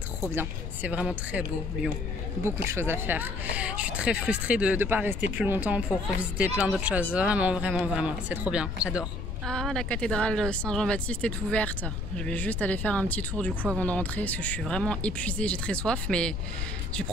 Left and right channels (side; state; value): left; noise; rumble, 3 dB below the sound